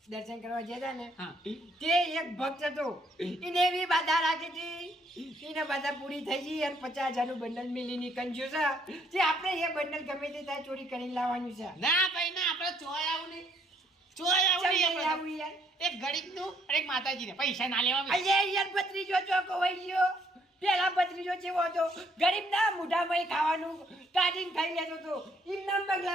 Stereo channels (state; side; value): normal; both; correlation 0.68